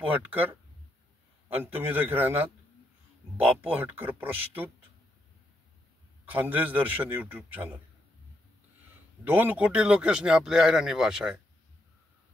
हटकर आणि तुम्ही देखील राहणार बापू हटकर प्रस्तुत खानदेश दर्शन यूट्यूब चॅनल. 2 कोटी लोकेशनी आपली आयराणी भाषा आहे.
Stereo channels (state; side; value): normal; both; correlation 0.79